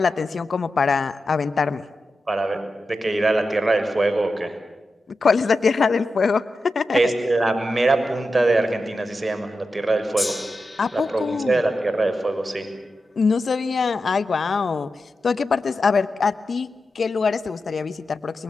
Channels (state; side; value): normal; both; correlation 0.91